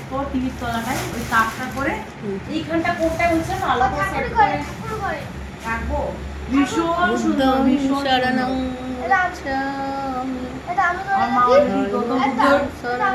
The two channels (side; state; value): both; identical; correlation 1.00